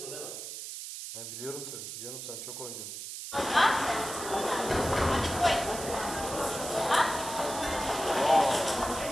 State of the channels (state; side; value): noise; right; hiss, 8 dB below the sound